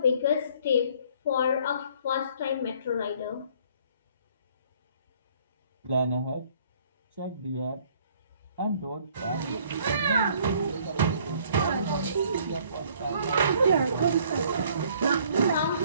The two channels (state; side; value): inverted; both; correlation -0.59